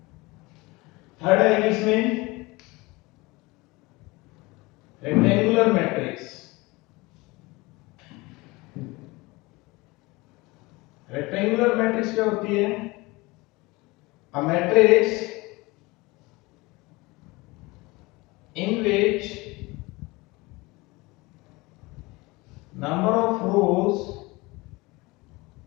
थर्ड है इसमें रेक्टेंगुलर मैट्रिक्स। रेक्टेंगुलर मैट्रिक्स क्या होती है? A matrix in which number of rows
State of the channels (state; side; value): quieter; right; 23.1 dB